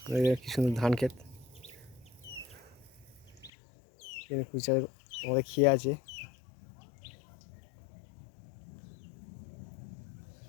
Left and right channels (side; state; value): right; drops out; at 3.5 s